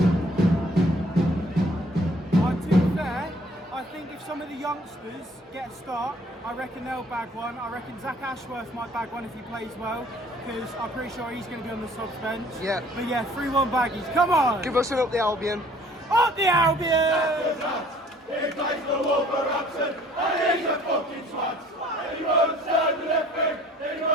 To be fair, I think if some of the youngsters youngsters get a start, I reckon they'll bag one. I reckon Zach Ashworth might bag one if he plays well, because I'm pretty sure he's going to be on the subs bench. Yeah. But yeah, 3-1 baggies. Come on! Give us an up the Albion. Up the Albion! He plays for Wolverhampton and he's a fucking twat. He runs down the left wing, he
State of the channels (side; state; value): both; normal; correlation 0.56